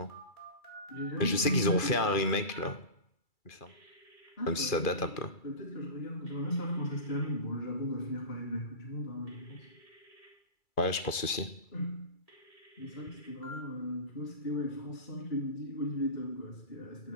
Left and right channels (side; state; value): right; late; 2.5 ms